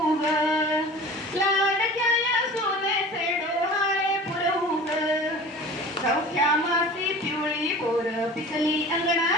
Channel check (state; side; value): normal; both; correlation 0.39